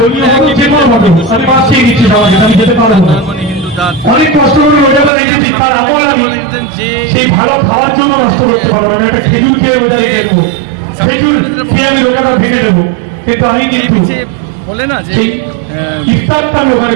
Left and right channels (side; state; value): left; drops out; at 5.1 s